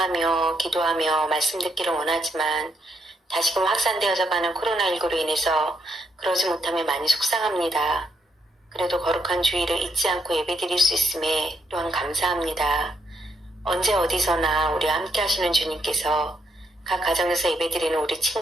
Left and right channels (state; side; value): normal; both; correlation 0.77